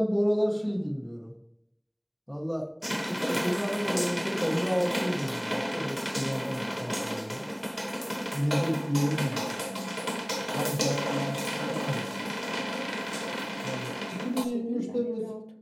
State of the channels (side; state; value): both; identical; correlation 1.00